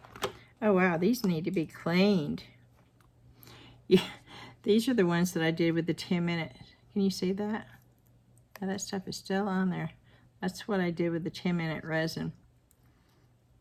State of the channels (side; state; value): both; identical; correlation 1.00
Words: Oh wow, these need to be cleaned. Yeah, these are the ones that I did with the 10-minute. Can you see that? Yeah, that stuff is still on there. That's what I did with the 10-minute resin.